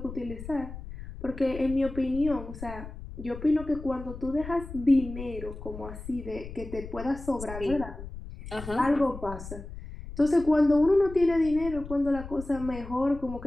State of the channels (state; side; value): noise; left; rumble, 12 dB below the sound